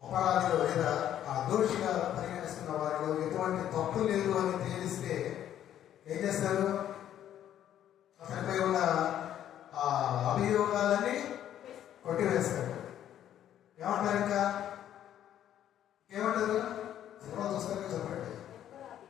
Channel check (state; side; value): quieter; right; 11.0 dB